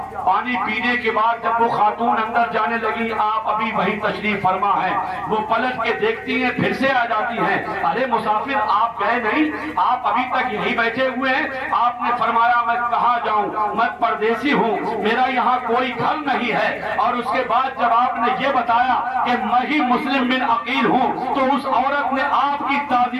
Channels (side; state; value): both; identical; correlation 1.00